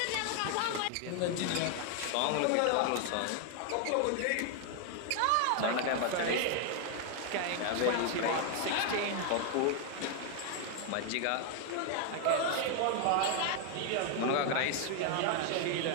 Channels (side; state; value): both; different; correlation 0.00